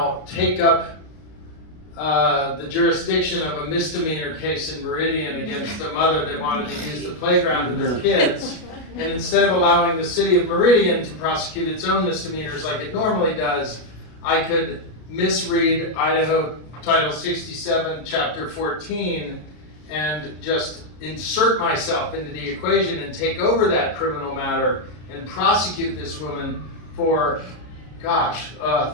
take up the jurisdiction of a misdemeanor case in Meridian against a mother that wanted to use the playground with her kids. And instead of allowing the city of Meridian to prosecute its own misdemeanors like it normally does, I could misread Idaho Title 67, Chapter 14, and just insert myself into the equation and take over that criminal matter and prosecute this woman for,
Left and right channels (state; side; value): late; right; 33 ms